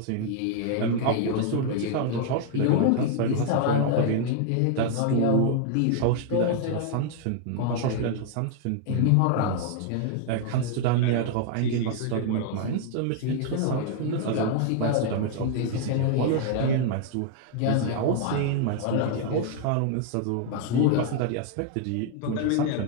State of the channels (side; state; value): both; different; correlation 0.00